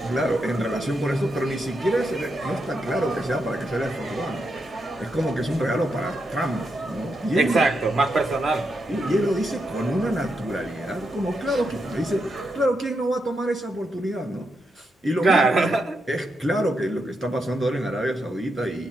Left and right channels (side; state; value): both; normal; correlation 0.83